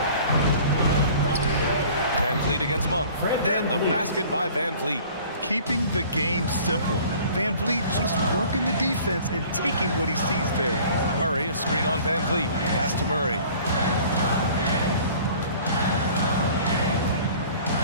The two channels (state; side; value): inverted; both; correlation -0.49